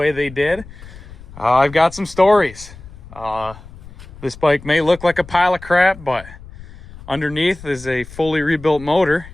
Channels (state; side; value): noise; left; rumble, 18 dB below the sound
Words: they did, I've got some stories. This bike may look like a pile of crap, but underneath is a fully rebuilt motor.